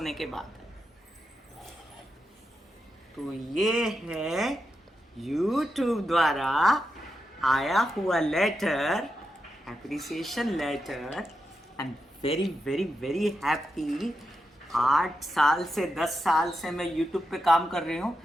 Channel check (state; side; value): normal; both; correlation 0.87